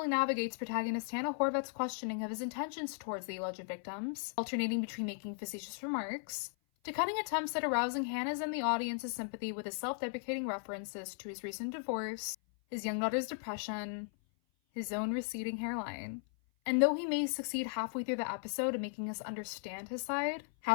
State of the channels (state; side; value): silent; right; 53 dB below the other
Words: navigates protagonist Hannah Horvath's questioning of his intentions towards the alleged victims, alternating between making facetious remarks, to cutting attempts at arousing Hannah's and the audience's sympathy with his self-deprecating references to his recent divorce, his young daughter's depression, his own receding hairline. And though he may succeed halfway through the episode in making us understand his side,